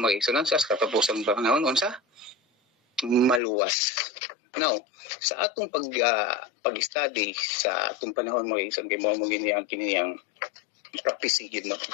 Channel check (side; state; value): right; drops out; at 3.4 s